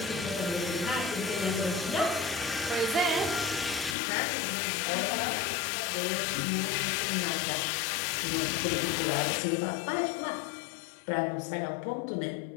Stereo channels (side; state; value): right; drops out; at 4.0 s